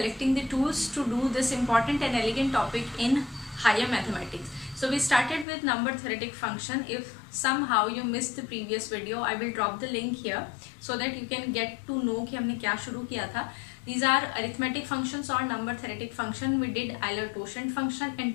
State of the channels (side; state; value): right; drops out; at 5.5 s